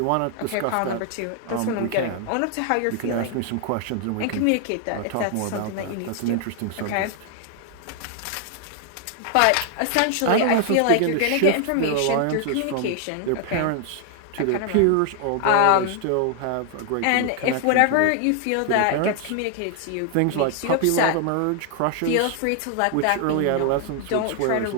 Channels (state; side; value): different; both; correlation 0.00